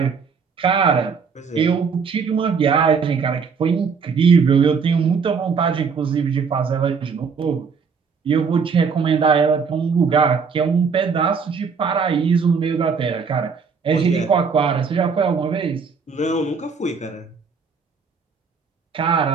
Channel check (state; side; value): quieter; left; 5.6 dB